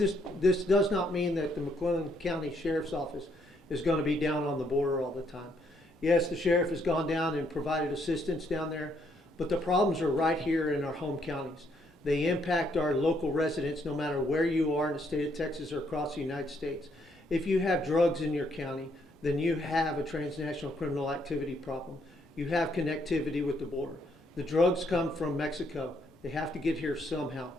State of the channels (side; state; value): both; normal; correlation 0.72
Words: does not mean that the McLennan County Sheriff's Office is going to be down on the border all the time. Yes, the sheriff has gone down and provided assistance down there, but the problems are right here in our home counties. They impact our local residents no matter where you are in the state of Texas or across the United States. If you have drugs in your county, then you have a transnational criminal activity problem. You have connectivity with the border. The drugs come from Mexico. They have to get here somehow.